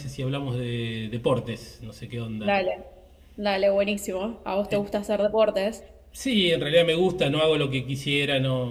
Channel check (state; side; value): identical; both; correlation 1.00